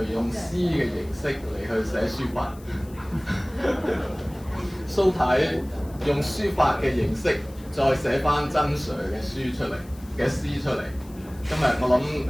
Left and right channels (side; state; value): left; noise; hiss, 24 dB below the sound